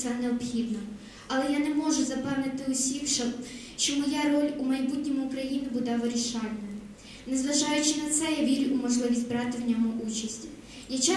необхідно. Але я не можу запевнити усіх, що моя роль у майбутньому України буде вирішальною. Незважаючи на це, я вірю у можливість брати в ньому участь. Я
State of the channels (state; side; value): identical; both; correlation 1.00